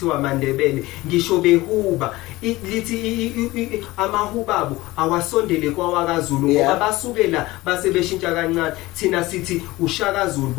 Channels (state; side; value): quieter; right; 19.3 dB